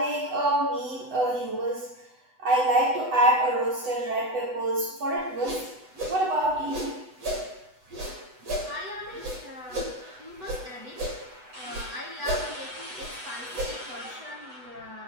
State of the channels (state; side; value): late; left; 8.0 ms